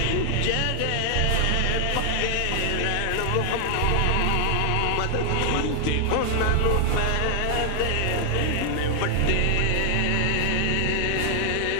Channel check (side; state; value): both; different; correlation 0.00